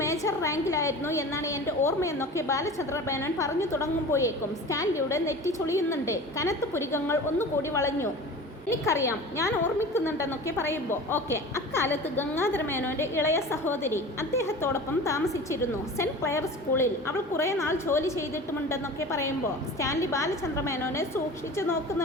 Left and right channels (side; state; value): both; normal; correlation 0.36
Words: മേജർ റാങ്കിലായിരുന്നു എന്നാണ് എൻ്റെ ഓർമ്മയെന്നൊക്കെ ബാലചന്ദ്ര മേനോൻ പറഞ്ഞു തുടങ്ങുമ്പോഴേക്കും സ്റ്റാൻലിയുടെ നെറ്റി ചൊളിയുന്നുണ്ട്. കനത്ത പുരികങ്ങൾ ഒന്നുകൂടി വളഞ്ഞു. എനിക്കറിയാം, ഞാൻ ഓർമ്മിക്കുന്നുണ്ടെന്നൊക്കെ പറയുമ്പോൾ ഓക്കെ. അക്കാലത്ത് ഗംഗാധര മേനോൻ്റെ ഇളയ സഹോദരി അദ്ദേഹത്തോടൊപ്പം താമസിച്ചിരുന്നു. സെൻറ്റ് ക്ലെയർ സ്കൂളിൽ. അവൾ കുറേ നാൾ ജോലി ചെയ്തിട്ടുമുണ്ടെന്നൊക്കെ പറയുമ്പോൾ സ്റ്റാൻലി ബാലചന്ദ്ര മേനോനെ സൂക്ഷിച്ചു